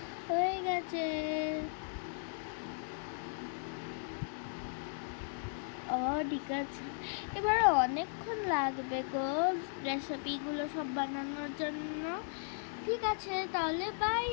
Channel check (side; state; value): right; silent; digital silence